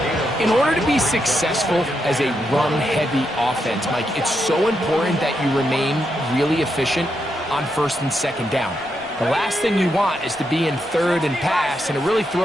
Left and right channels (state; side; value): noise; left; rumble, 28 dB below the sound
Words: In order to be successful as a run-heavy offense, Mike, it's so important that you remain really efficient on first and second down. The last thing you want is to be in third and pass, and it really